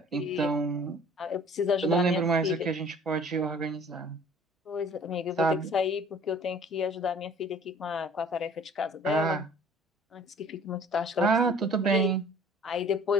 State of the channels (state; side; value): normal; both; correlation 0.51